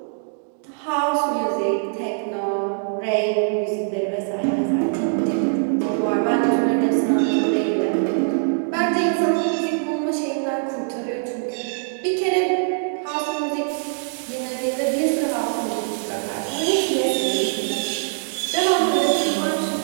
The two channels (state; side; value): silent; left; digital silence